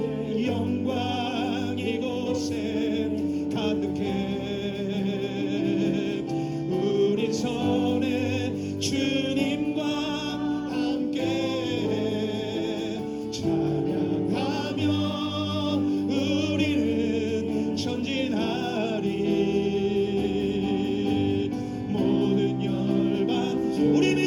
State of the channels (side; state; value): both; identical; correlation 1.00